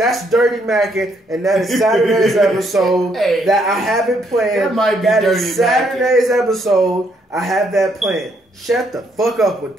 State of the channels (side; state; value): both; normal; correlation 0.72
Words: Dirty Mackin', and that is Saturday's episode that I have it planned. That is Saturday's episode. I have that planned. Shut the fuck up with